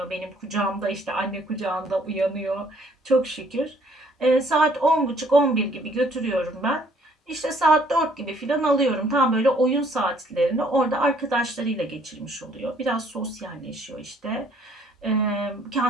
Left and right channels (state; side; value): normal; both; correlation 0.62